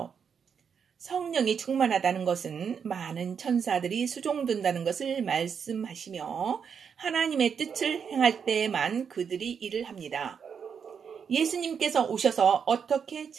성령이 충만하다는 것은 많은 천사들이 수종든다는 것을 말씀하시며 하나님의 뜻을 행할 때에만 그들이 일을 합니다. 예수님께서 오셔서 어떻게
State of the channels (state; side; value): quieter; left; 6.9 dB